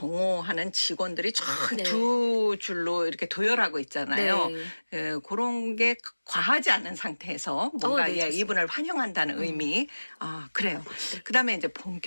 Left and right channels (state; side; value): inverted; both; correlation -1.00